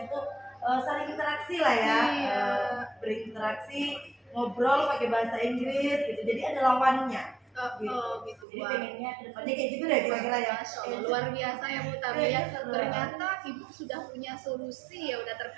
itu saling interaksi lah ya, berinteraksi, ngobrol pakai bahasa Inggris gitu, jadi ada lawannya. Gitu. Jadi Wah. pengennya kedepannya kayak gitu deh kira-kira ya. Masya Allah, luar biasa ya Bu Tami ya. Iya, seru. Ternyata Ibu sudah punya solusi ya, udah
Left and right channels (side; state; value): left; drops out; at 8.5 s